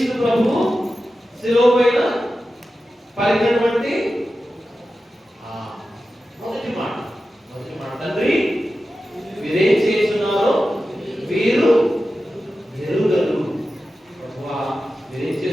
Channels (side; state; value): both; normal; correlation 0.93